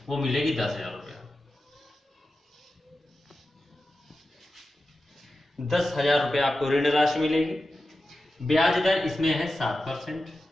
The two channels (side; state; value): both; normal; correlation 0.92